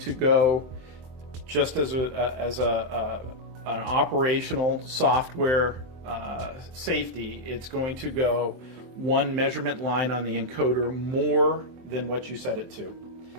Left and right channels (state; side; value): late; left; 23 ms